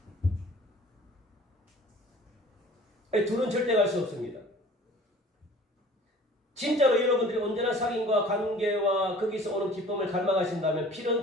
둘은 절대 갈 수 없습니다. 진짜로 여러분들이 언제나 사귐과 관계와 거기서 오는 기쁨을 갈망하신다면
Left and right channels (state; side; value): normal; both; correlation 0.47